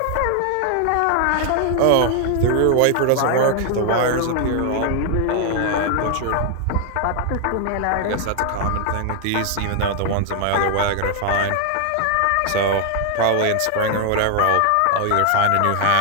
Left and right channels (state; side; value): different; both; correlation 0.00